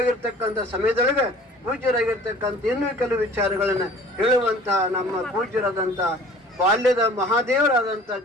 ಸಮಯದೊಳಗೆ ಪೂಜ್ಯರಾಗಿರ್ತಕ್ಕಂಥ ಇನ್ನೂ ಕೆಲವು ವಿಚಾರಗಳನ್ನ ಹೇಳುವಂತಹ ನಮ್ಮ ಪೂಜ್ಯರಾದಂಥ ಬಾಲ್ಯದ ಮಹಾದೇವರಾದಂಥ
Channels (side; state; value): both; normal; correlation 0.48